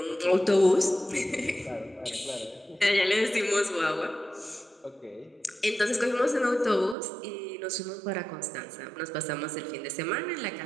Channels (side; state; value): left; drops out; at 7.0 s